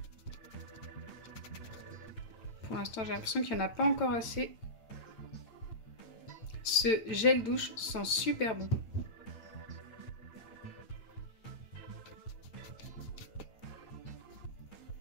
Pour l'instant, j'ai l'impression qu'il n'y en a pas encore assez. Ce gel douche sent super bon.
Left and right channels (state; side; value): late; right; 9.1 ms